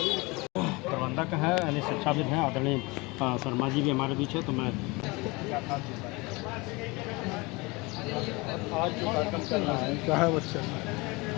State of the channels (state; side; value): quieter; right; 25.1 dB